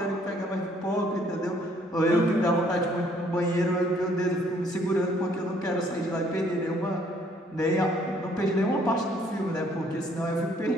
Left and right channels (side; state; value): both; normal; correlation 0.64